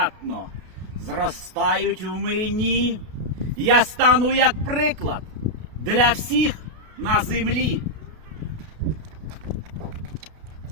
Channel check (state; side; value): late; left; 32 ms